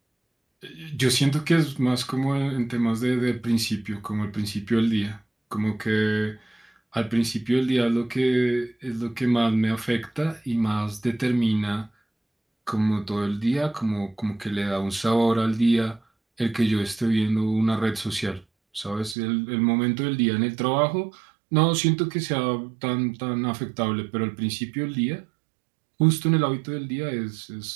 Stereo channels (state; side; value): drops out; left; at 19.2 s